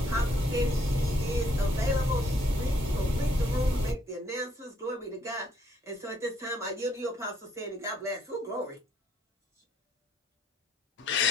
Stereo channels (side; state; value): both; normal; correlation 0.68